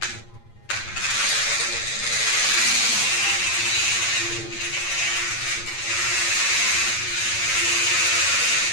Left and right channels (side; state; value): right; late; 8.8 ms